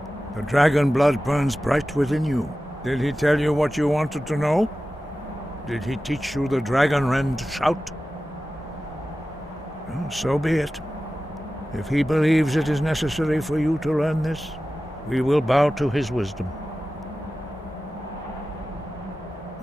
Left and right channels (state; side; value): normal; both; correlation 0.94